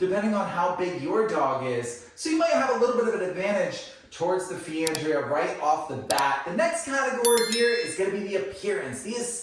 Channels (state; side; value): identical; both; correlation 1.00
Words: on how big your dog is. So you might have a little bit of an advantage towards the Feandrea right off the bat. The next category here is going to be the appearance, the